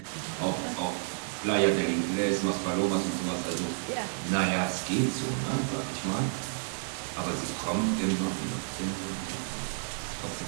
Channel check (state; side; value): silent; left; digital silence